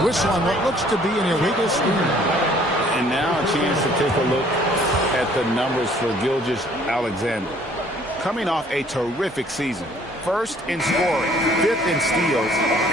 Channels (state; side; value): normal; both; correlation 0.59